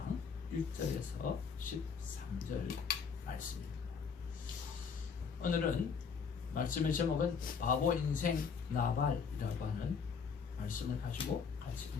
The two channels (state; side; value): quieter; right; 6.0 dB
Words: 1절에서 13절 말씀입니다. 오늘은 말씀의 제목은 바보 인생 나발이라고 하는 말씀을 가지고 같이